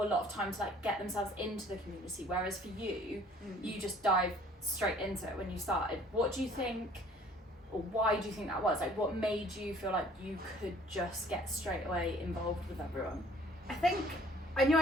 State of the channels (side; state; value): both; normal; correlation 0.55